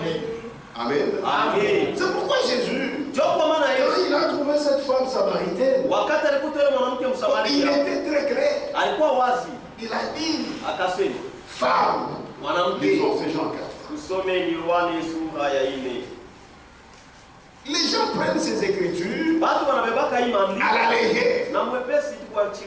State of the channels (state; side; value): identical; both; correlation 1.00